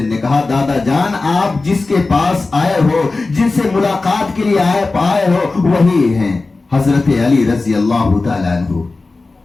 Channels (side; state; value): right; quieter; 3.6 dB